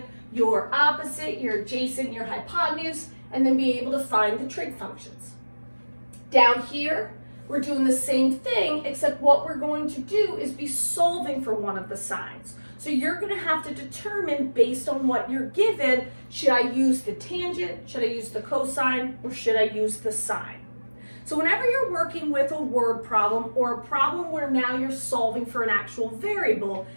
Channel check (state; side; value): inverted; both; correlation -1.00